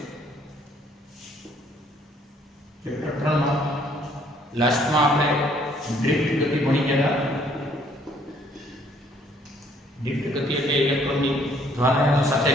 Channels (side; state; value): both; normal; correlation 0.62